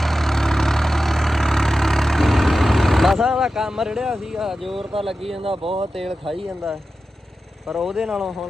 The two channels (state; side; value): normal; both; correlation 0.92